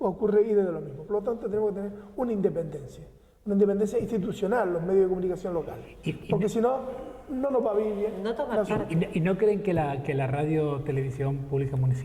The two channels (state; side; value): identical; both; correlation 1.00